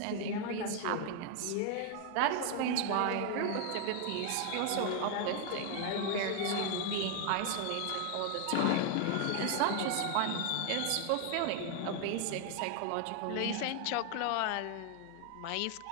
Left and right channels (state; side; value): different; both; correlation 0.00